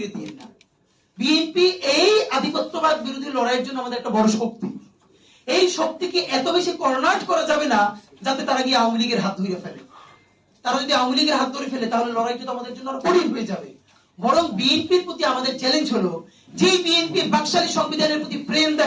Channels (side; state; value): both; identical; correlation 1.00